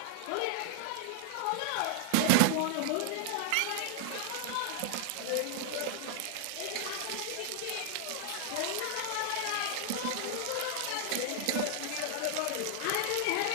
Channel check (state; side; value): different; both; correlation 0.00